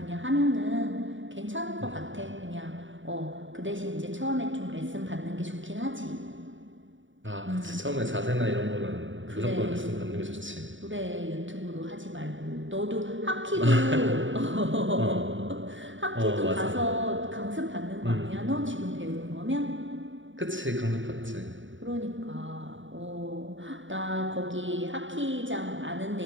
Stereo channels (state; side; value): late; left; 0.56 ms